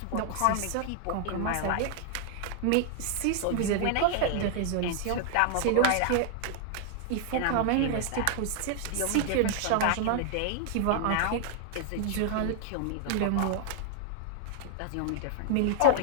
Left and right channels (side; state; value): both; different; correlation 0.00